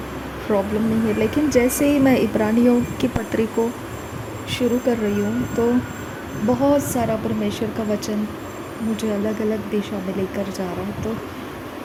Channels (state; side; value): identical; both; correlation 1.00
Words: प्रॉब्लम नहीं है। लेकिन जैसे ही मैं इब्रानियों की पत्री को शुरू कर रही हूँ तो बहुत सारा परमेश्वर का वचन मुझे अलग अलग दिशा में लेकर जा रहा है। तो